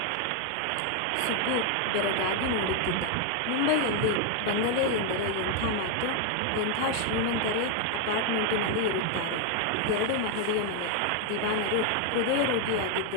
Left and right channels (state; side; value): different; both; correlation 0.01